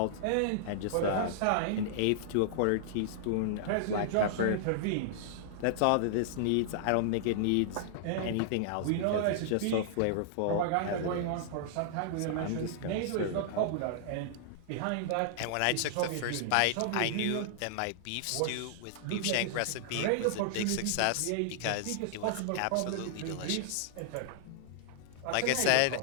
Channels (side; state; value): both; different; correlation -0.01